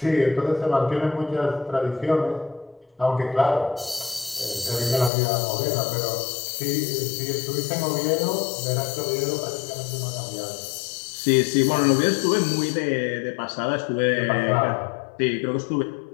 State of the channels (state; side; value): drops out; right; at 5.1 s